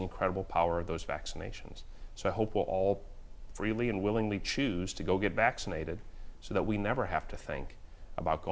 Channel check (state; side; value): identical; both; correlation 1.00